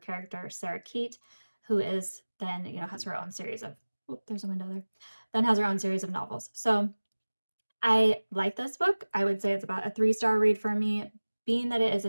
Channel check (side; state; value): both; inverted; correlation -1.00